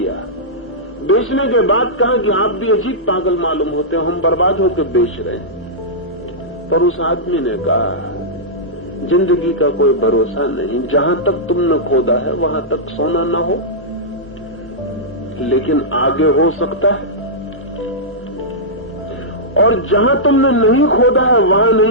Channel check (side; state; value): both; normal; correlation -0.13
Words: बेचने के बाद कहा कि आप भी अजीब पागल मालूम होते हो, हम बर्बाद होकर बेच रहे हैं। पर उस आदमी ने कहा जिंदगी का कोई भरोसा नहीं, जहां तक तुमने खोदा है वहां तक सोना न हो, लेकिन आगे हो सकता है। और जहां तुमने नहीं खोदा है वहां